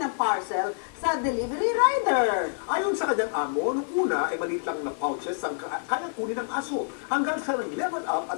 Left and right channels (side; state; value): right; silent; digital silence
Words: ang parcel sa delivery rider? Ayon sa kanyang amo, nung una ay maliit lang na pouches ang kaya kunin ng aso. Hanggang sa nag-level up